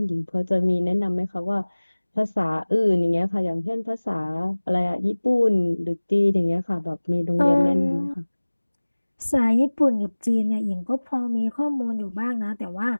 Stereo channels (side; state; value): both; inverted; correlation -1.00